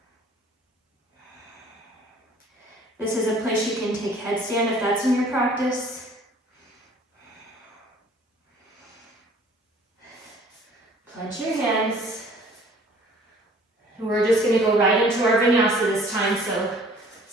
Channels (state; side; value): normal; both; correlation 0.53